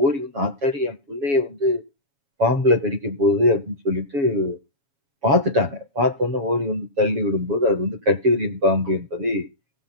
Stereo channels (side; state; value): left; late; 7.1 ms